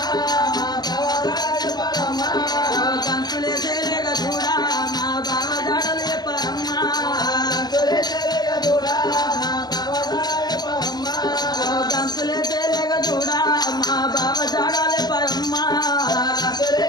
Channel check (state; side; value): late; right; 0.20 ms